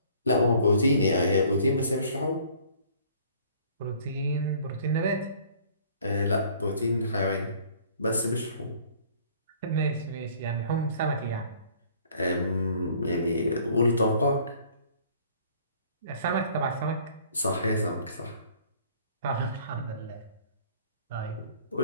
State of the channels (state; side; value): inverted; both; correlation -0.55